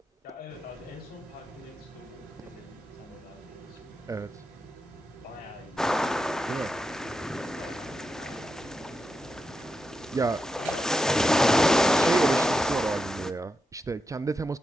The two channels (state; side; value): normal; both; correlation 0.87